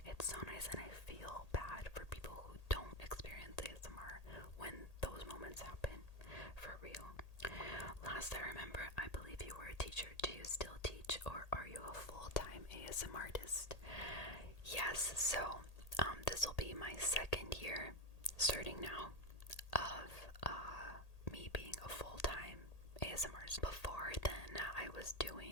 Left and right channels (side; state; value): right; late; 1.8 ms